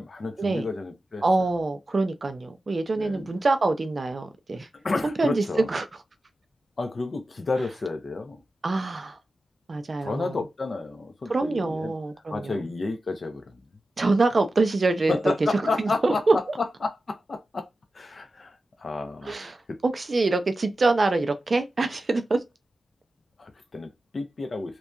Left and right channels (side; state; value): both; normal; correlation 0.93